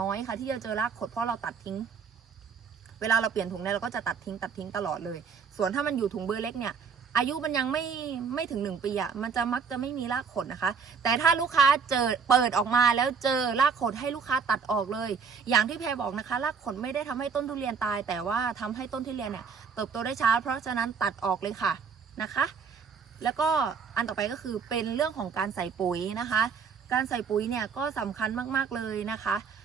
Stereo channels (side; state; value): left; quieter; 5.8 dB